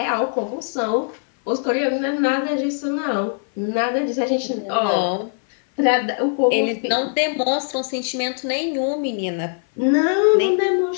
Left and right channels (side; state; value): right; silent; 57 dB below the other